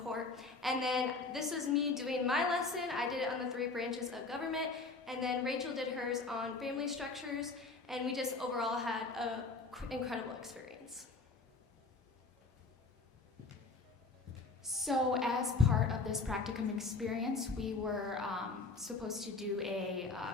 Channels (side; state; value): right; quieter; 3.9 dB